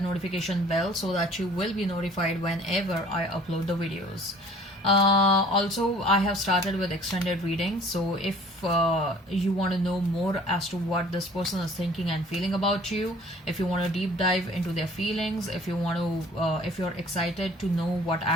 notification bell so that you will be notified whenever I upload the videos. Also, I have started with extended readings, so if you want to know more as to what this person is thinking and feeling about you, if you want to deep dive into their feelings, if you want to if you're excited to know what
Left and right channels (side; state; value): both; normal; correlation 0.52